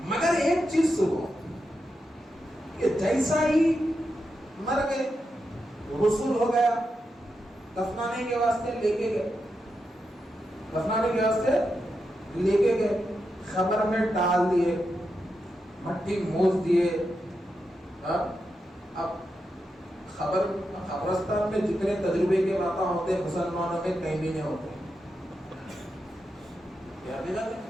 مگر ایک چیز سنو کہ جیسا ہی مر گئے، رسول ہو گیا، دفنانے کے واسطے لے کے گئے، دفنانے کے واسطے لے کے گئے، خبر میں ڈال دیے، مٹی موج دیے. اب قبرستان میں جتنے تجربے کے باتیں ہوتے ہیں مسلمانوں میں کہیں بھی نہیں ہوتے.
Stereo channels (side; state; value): both; normal; correlation 0.87